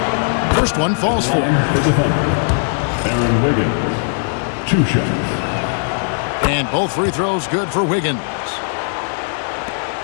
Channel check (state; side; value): silent; right; digital silence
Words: First one falls for. Aaron Wiggins. 2 shots. And both free throws good for Wiggins.